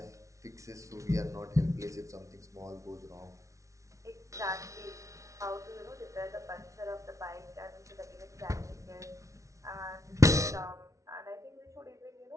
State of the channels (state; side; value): late; left; 0.15 ms